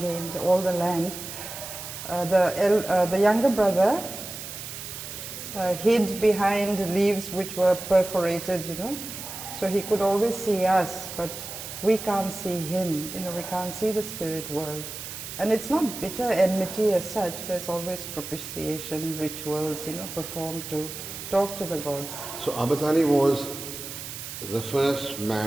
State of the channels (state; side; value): noise; right; hiss, 9 dB below the sound